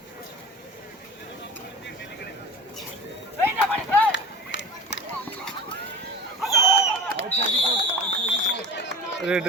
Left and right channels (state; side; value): normal; both; correlation 0.35